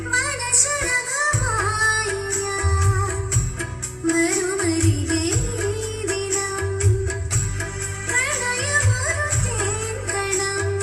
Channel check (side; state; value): both; identical; correlation 1.00